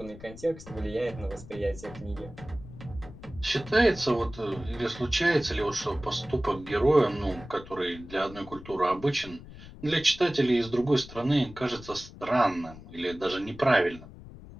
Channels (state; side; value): noise; left; rumble, 16 dB below the sound